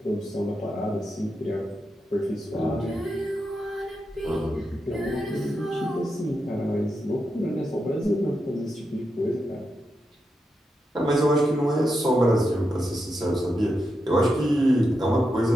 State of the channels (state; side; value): normal; both; correlation 0.86